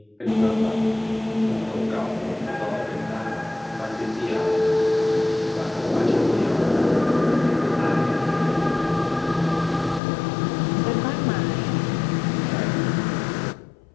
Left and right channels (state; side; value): drops out; right; at 10.0 s